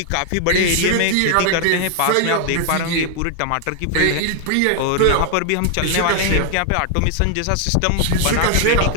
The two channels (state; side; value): different; both; correlation 0.00